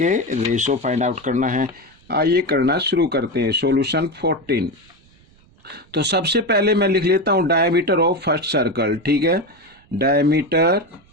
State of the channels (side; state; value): right; noise; rumble, 30 dB below the sound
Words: रेशो फाइंड आउट करना है। आइए करना शुरू करते हैं। सॉल्यूशन 14। तो सबसे पहले मैं लिख लेता हूं डायमीटर ऑफ फर्स्ट सर्कल। ठीक है, diameter